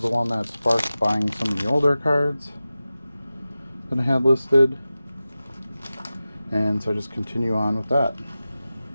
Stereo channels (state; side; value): inverted; both; correlation -0.95